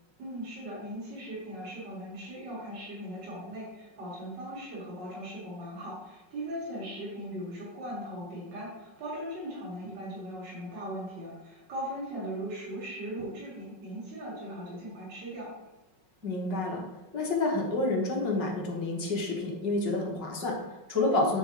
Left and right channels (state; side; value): late; left; 5.4 ms